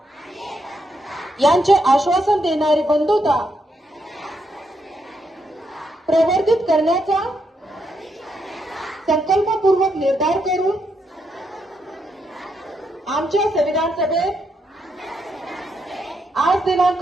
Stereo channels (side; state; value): both; normal; correlation 0.79